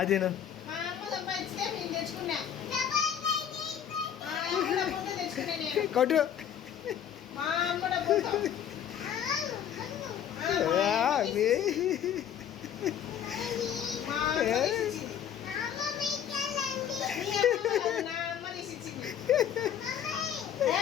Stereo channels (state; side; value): quieter; right; 9.2 dB